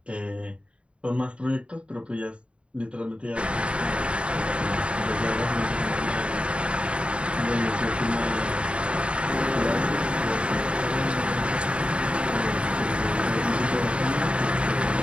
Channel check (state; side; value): late; left; 0.058 ms